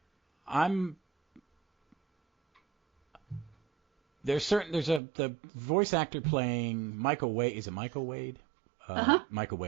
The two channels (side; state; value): left; drops out; at 5.0 s